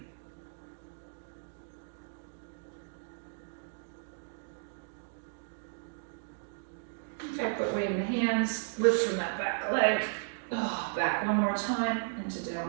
Okay, put weight in the hands, lift from that back leg. Oh, back one more time into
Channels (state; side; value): silent; left; digital silence